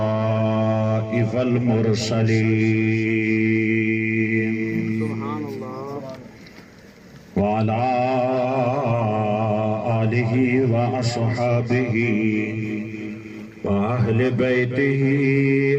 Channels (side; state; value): both; identical; correlation 1.00